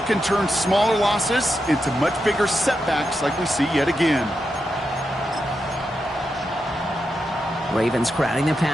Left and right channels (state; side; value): normal; both; correlation 0.87